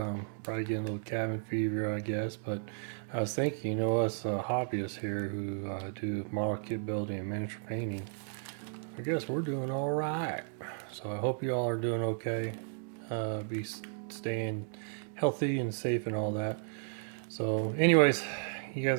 Probably getting a little cabin fever, I guess. But I was thinking, us hobbyists here who do model kit building and miniature painting, I guess we're doing all right. So I hope y'all are doing okay. Be staying healthy and safe and all that. So, anyways, you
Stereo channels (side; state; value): left; silent; digital silence